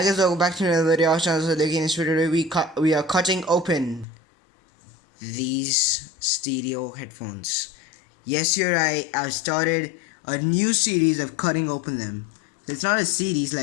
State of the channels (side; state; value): right; drops out; at 4.0 s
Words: guys, welcome back to another video. So in this video, we are cutting open these stereo headphones. Yes, you're right. I've started a new series of cutting open them. It's not a series,